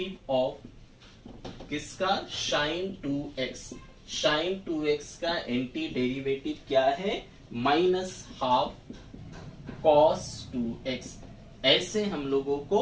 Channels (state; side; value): identical; both; correlation 1.00